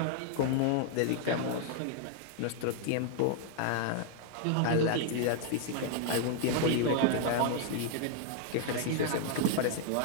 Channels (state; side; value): different; both; correlation 0.00